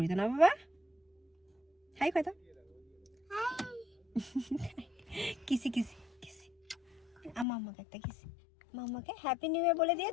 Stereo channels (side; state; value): right; drops out; at 7.5 s